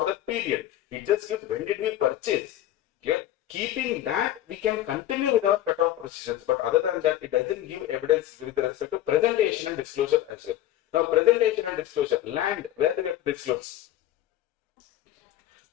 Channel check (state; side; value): quieter; right; 13.1 dB